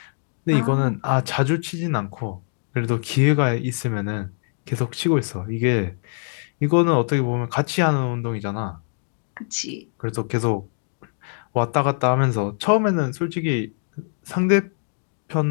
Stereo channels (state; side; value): silent; right; digital silence